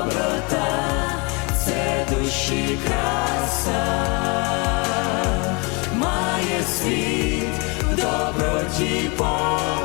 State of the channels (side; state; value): right; quieter; 30.1 dB